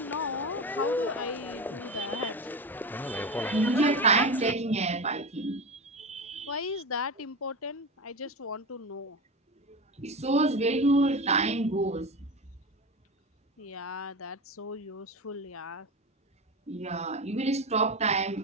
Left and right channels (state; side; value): normal; both; correlation 0.23